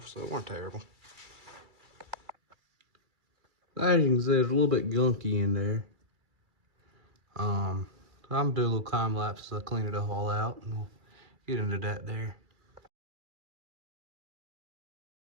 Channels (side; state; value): left; late; 2.3 ms